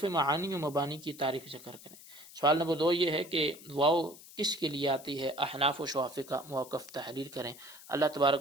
معانی و مبانی کی تعریف ذکر کریں. سوال نمبر 2 یہ ہے کہ واو کس کے لیے آتی ہے، احناف و شوافی کا موقف تحریر کریں. اللہ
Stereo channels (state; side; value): noise; left; hiss, 18 dB below the sound